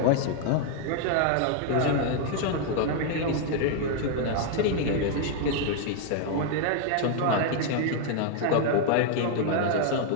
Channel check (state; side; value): different; both; correlation 0.00